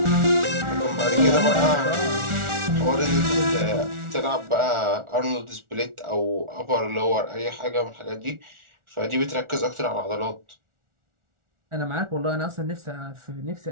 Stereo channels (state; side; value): late; left; 1.4 ms